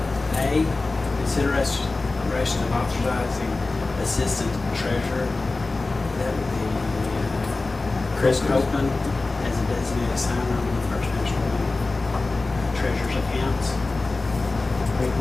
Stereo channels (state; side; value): quieter; right; 3.4 dB